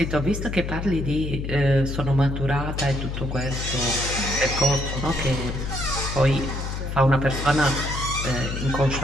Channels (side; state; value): left; noise; hum, 4 dB below the sound